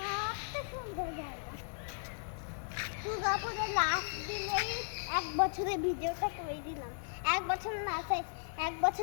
সুন্দর জায়গা। দুর্গাপুরের লাস্ট দিনেই 1 বছরের ভিডিওটা করে দিলাম, 1 বছর না চাই 1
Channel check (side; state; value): right; silent; digital silence